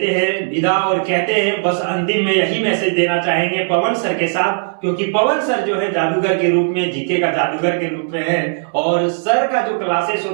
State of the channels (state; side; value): silent; left; digital silence